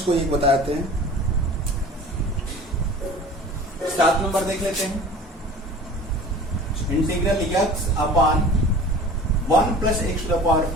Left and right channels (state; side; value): normal; both; correlation 0.42